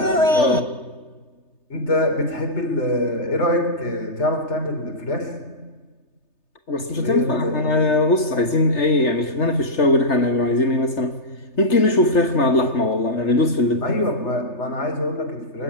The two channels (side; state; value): right; late; 3.3 ms